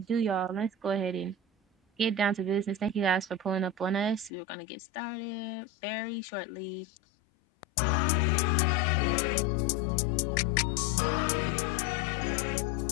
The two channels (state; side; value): drops out; right; at 4.3 s